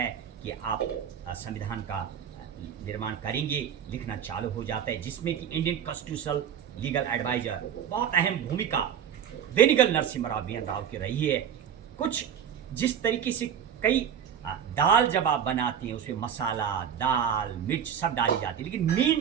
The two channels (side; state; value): left; quieter; 8.6 dB